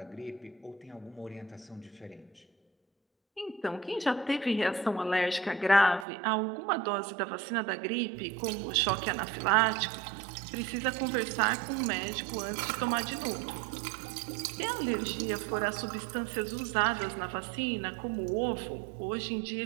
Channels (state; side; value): drops out; left; at 6.1 s